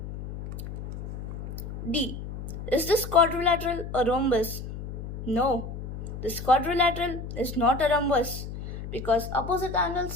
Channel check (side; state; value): left; noise; hum, 8 dB below the sound